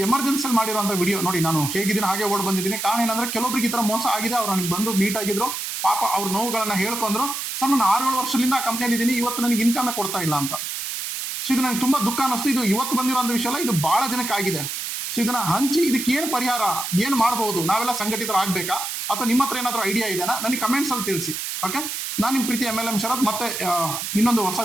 ಎಮರ್ಜೆನ್ಸಿಯಲ್ಲಿ ಮಾಡಿರುವಂಥ ವಿಡಿಯೋ ನೋಡಿ. ನಾನು ಹೇಗಿದ್ದೀನಿ ಹಾಗೆ ಓಡ್ ಬಂದಿದ್ದೀನಿ. ಕಾರಣ ಏನಂದ್ರೆ ಕೆಲವೊಬ್ರಿಗೆ ಈ ಥರ ಮೋಸ ಆಗಿದೆ. ಅವ್ರು ನನಗೆ ಬಂದು ಮೀಟ್ ಆಗಿದ್ರು, ಪಾಪ ಅವ್ರ ನೋವುಗಳನ್ನ ಹೇಳ್ಕೊಂಡ್ರು. ಸರ್ ನಾನು 6-7 ವರ್ಷದಿಂದ ಆ ಕಂಪ್ನಿಯಲ್ಲಿ ಇದ್ದೀನಿ, ಇವತ್ತು ನನಗೆ ಇನ್ಕಮೇ ಕೊಡ್ತಾ ಇಲ್ಲ ಅಂತ. ಸೊ ಇದು ನನಗೆ ತುಂಬ ದುಃಖ ಅನ್ನಿಸ್ತು. ಇದು ಇವತ್ತು ಬಂದಿರೋಂಥ ವಿಷಯ ಅಲ್ಲ, ಇದು ಭಾಳ ಜನಕ್ಕೆ ಆಗಿದೆ. ಸೊ ಇದನ್ನ ಹಂಚಿ ಇದಕ್ಕೆ ಏನು ಪರಿಹಾರ, ಏನು ಮಾಡ್ಬೋದು, ನಾವೆಲ್ಲ ಸಂಘಟಿತರಾಗಬೇಕಾ ಅಥವಾ ನಿಮ್ಮ ಹತ್ರ ಏನಾದರೂ ಐಡಿಯಾ ಇದೆಯಾ ನನಗೆ ಕಮೆಂಟ್ಸಲ್ಲಿ ತಿಳಿಸಿ. ಓಕೆ, ನಾನು ನಿಮ್ಮ ಪ್ರೀತಿ MLM ಶರತ್ ಮತ್ತೆ ಇನ್ನೊಂದು ಹೊಸ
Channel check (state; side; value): noise; right; hiss, 4 dB below the sound